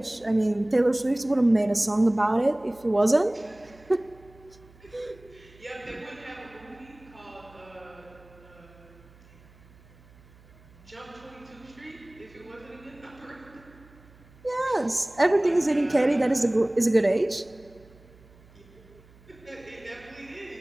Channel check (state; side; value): noise; right; hum, 26 dB below the sound